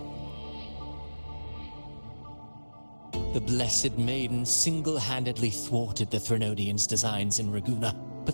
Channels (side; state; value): both; inverted; correlation -1.00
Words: The Blessed Maiden single-handedly thwarted the Threnodian's designs in Raguna,